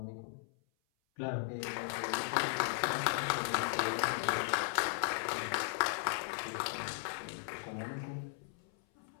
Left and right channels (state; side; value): silent; right; 53 dB below the other